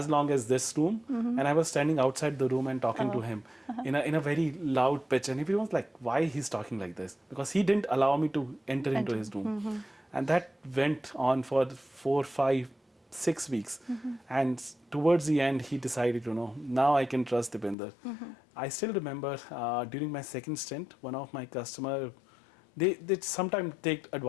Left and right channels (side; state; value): right; drops out; at 17.8 s